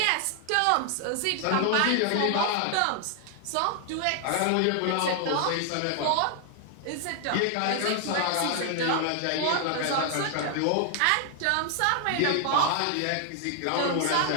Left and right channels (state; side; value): different; both; correlation 0.00